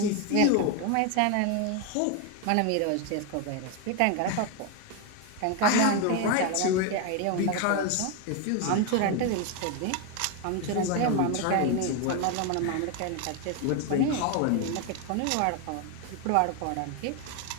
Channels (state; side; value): different; both; correlation 0.01